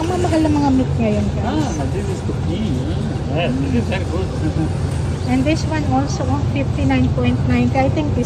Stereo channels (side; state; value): both; identical; correlation 1.00